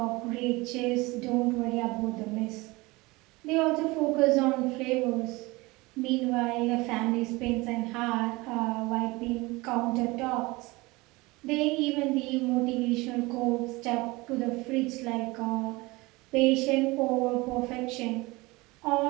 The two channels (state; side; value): quieter; left; 22.7 dB